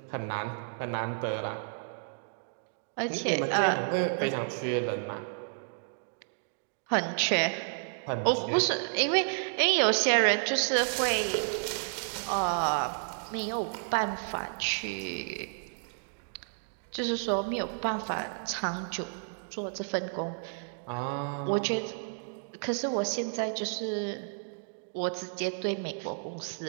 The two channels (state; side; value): silent; left; digital silence